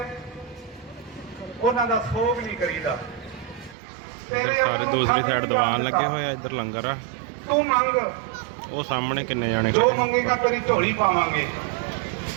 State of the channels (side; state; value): left; drops out; at 3.8 s